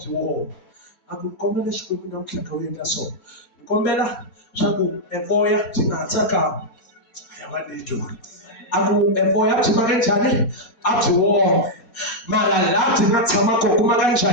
woma a ku kombela xikwembu namuntlha ka u endla so ni kombela swa ku evoya byi nga ha tsakami a va nitwa a ku evoya byi maka njhani a byi woma mara laha byi nga tshama kona ku maka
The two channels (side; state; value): right; late; 4.2 ms